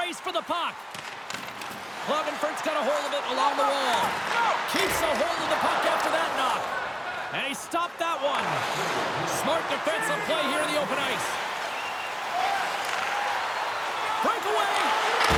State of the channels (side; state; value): both; identical; correlation 1.00